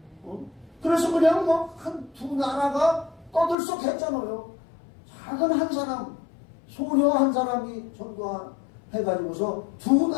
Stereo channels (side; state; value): right; drops out; at 3.6 s